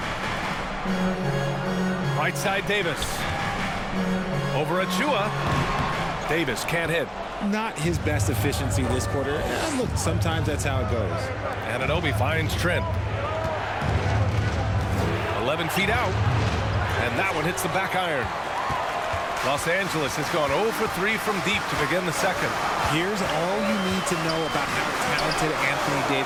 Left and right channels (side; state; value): both; identical; correlation 1.00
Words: Right side Davis. Over Achua. Davis can't hit. Not his best efficiency this quarter. Look, sometimes that's how it goes. Anunoby finds Trent. 11 feet out. And that one hits the back iron. Los Angeles has gone 0 for 3 from deep to begin the second. Here's all you need to know about how talented Anthony